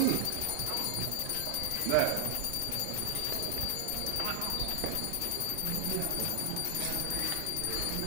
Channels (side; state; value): both; different; correlation 0.00